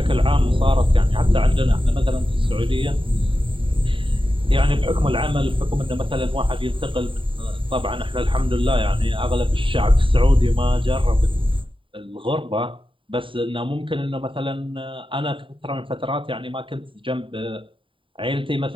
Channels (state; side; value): late; left; 0.25 ms